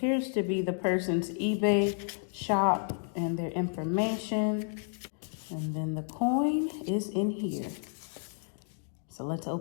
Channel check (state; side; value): silent; right; 57 dB below the other